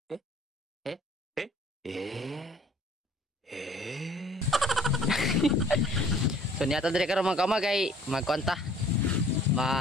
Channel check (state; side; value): normal; both; correlation 0.55